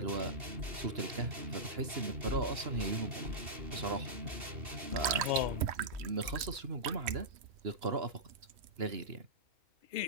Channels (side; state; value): left; late; 3.1 ms